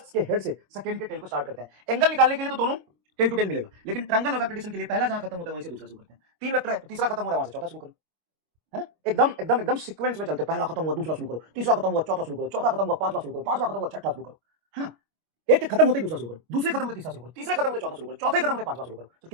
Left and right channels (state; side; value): late; left; 25 ms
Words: से सेकंड के टेल को स्टार्ट करते हैं। एंगल निकालने के लिए तो दोनों टेल टू टेल मिलेगा, लेकिन ट्रायंगल ऑफ वेक्टर एडिशन के लिए पहला जहां खत्म होता है वहीं से दूसरा शुरू करते हैं। तीन वेक्टर है तो तीसरा खत्म हो रहा है वहां से चौथा शुरू करो, है ना? एकदम एकदम एकदम सीक्वेंस में चलते, पहला खत्म हुआ दूसरा शुरू करो, तीसरा खत्म हुआ चौथा शुरू करो, चौथा खत्म हुआ पांचवा शुरू करो, पांचवा खत्म हुआ छठा शुरू करो, है ना? एक खत्म होते ही दूसरा शुरू करो, दूसरे खत्म होते तीसरा शुरू करो, तीसरे खत्म होते चौथा शुरू करो, चौथे खत्म होते पांचवा शुरू करो। तो